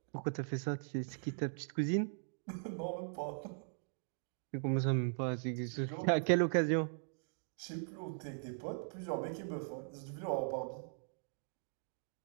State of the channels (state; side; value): silent; left; digital silence